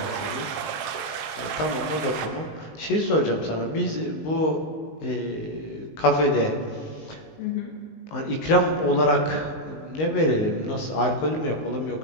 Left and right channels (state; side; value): late; right; 19 ms